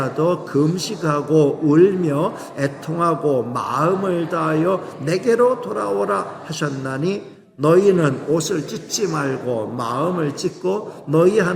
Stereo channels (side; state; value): both; identical; correlation 1.00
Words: 금식하고 울며 애통하고 마음을 다하여 내게로 돌아오라 하셨나니 너희는 옷을 찢지 말고 마음을 찢고 너희